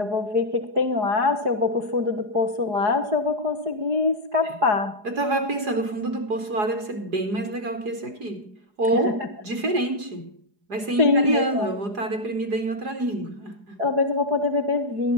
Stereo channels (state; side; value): late; left; 4.8 ms